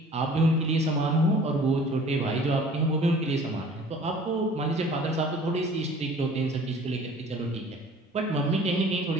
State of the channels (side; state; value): both; normal; correlation 0.49